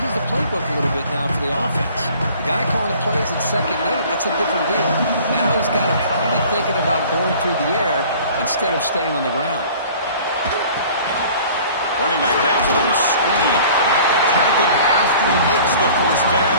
the playbook a little bit now for the offense. The guy calling the plays at 2nd and 8, that's a different deal. Now he's got to probably thinking about going through the air instead of staying on the ground. Running back grabs it on the screen. Tackled after he makes the first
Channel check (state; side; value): inverted; both; correlation -0.48